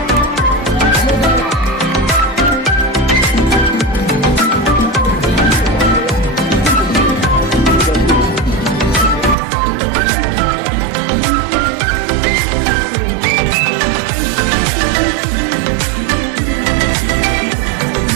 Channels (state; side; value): drops out; left; at 9.3 s